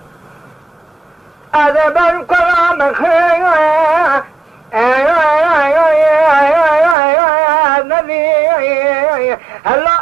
ادب القرآن خير النبي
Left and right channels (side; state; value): left; drops out; at 7.0 s